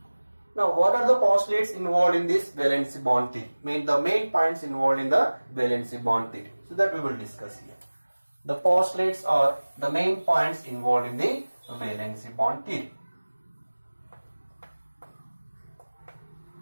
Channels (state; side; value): inverted; both; correlation -1.00